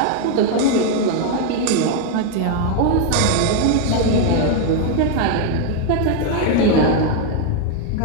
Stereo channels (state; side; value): different; both; correlation 0.01